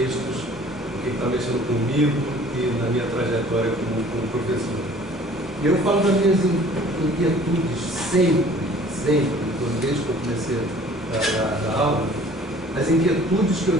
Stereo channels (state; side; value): normal; both; correlation 0.51